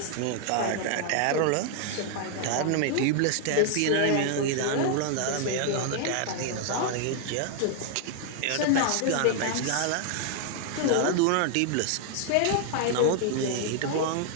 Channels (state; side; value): different; both; correlation 0.00